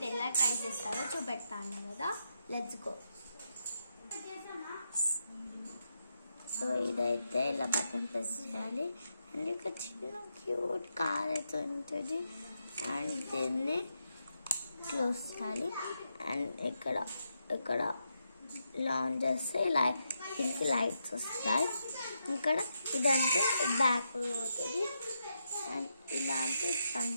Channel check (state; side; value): inverted; both; correlation -0.83